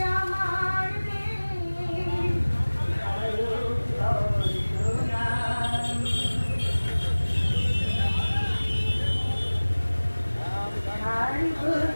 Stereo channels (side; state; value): both; inverted; correlation -1.00